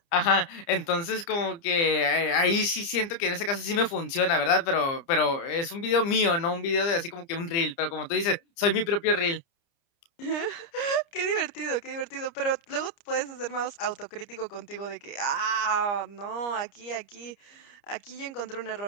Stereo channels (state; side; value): late; right; 30 ms